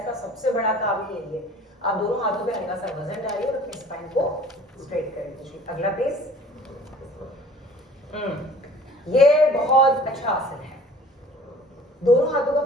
सबसे बड़ा काम ही है ये। आप दोनों हाथों पे हल्का सा वजन डालिए और अपने स्पाइन को स्ट्रेट करें। अगला प्लीज। ये बहुत अच्छा आसन है, दोनों हाथों का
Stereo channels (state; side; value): normal; both; correlation 0.48